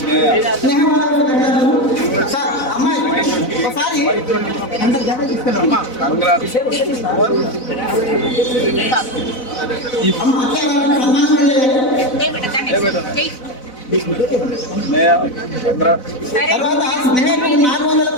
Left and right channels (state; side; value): late; right; 4.0 ms